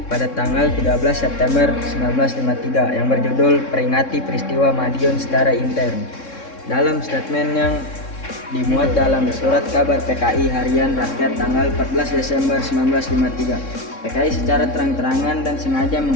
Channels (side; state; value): right; late; 3.6 ms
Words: pada tanggal 13 September 1953 yang berjudul Peringati Peristiwa Madiun Secara Intern. Dalam statement yang dimuat dalam surat kabar PKI Harian Rakyat tanggal 14 Desember 1953, PKI secara terang-terangan dan sengaja